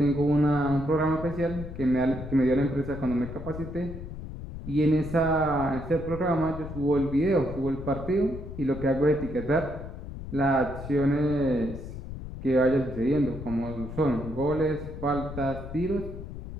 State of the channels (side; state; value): left; noise; rumble, 10 dB below the sound